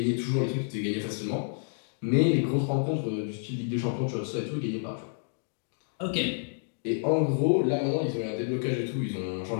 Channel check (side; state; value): right; silent; digital silence